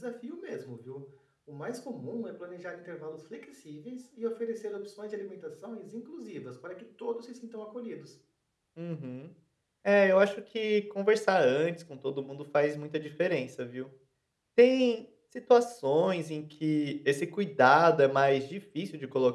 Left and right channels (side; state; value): both; identical; correlation 1.00